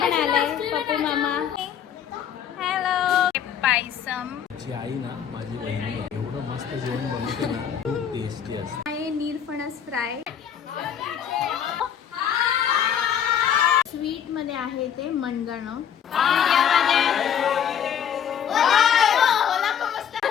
आलाय, पप्पू मामा. हॅलो. पायसम. माझी आई ना, माझी बहिणी एवढं मस्त जेवण बनवते ना, खूप टेस्टी असते. आहे नीरफणस फ्राय. स्वीट मध्ये आहे ते मनगणं.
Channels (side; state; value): right; quieter; 8.6 dB